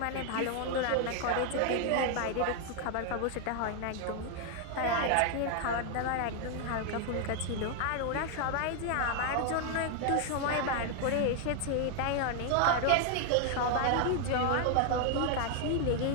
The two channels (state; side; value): different; both; correlation 0.00